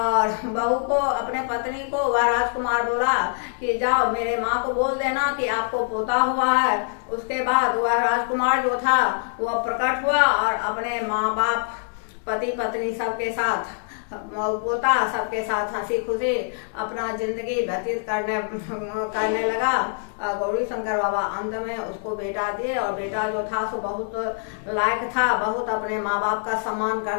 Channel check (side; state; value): right; silent; digital silence